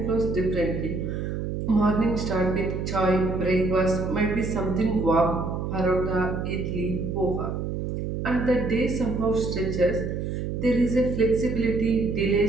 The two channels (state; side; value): noise; right; hum, 3 dB below the sound